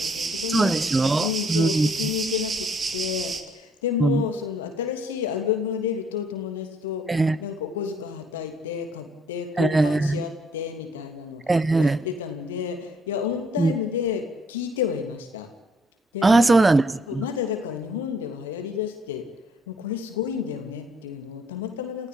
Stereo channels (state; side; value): normal; both; correlation 0.66